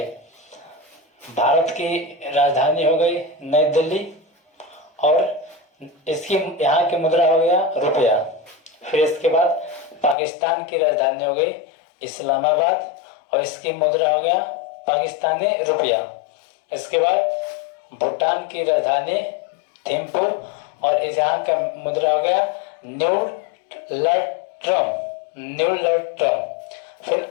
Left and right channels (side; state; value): right; drops out; at 10.2 s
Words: भारत की राजधानी हो गई नई दिल्ली और इसकी यहाँ की मुद्रा हो गया रुपया। फिर इसके बाद पाकिस्तान की राजधानी हो गई इस्लामाबाद और इसकी मुद्रा हो गया पाकिस्तानी रुपया। इसके बाद भूटान की राजधानी थिम्पू और इस यहाँ का मुद्रा हो गया न्यूलट्रम। फिर